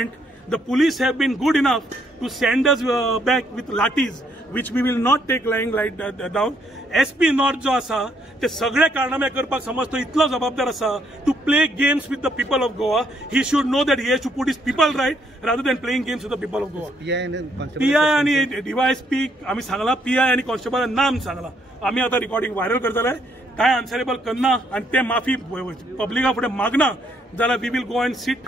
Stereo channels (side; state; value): both; normal; correlation 0.71